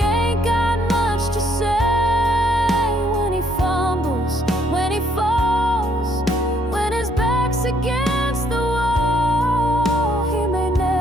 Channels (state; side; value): normal; both; correlation 0.69